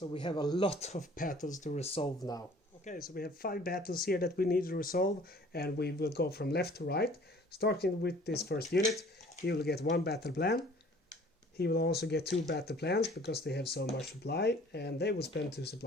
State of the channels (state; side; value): normal; both; correlation 0.52